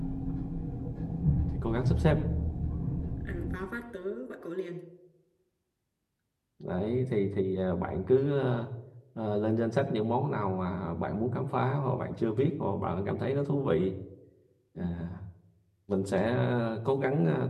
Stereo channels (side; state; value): both; identical; correlation 1.00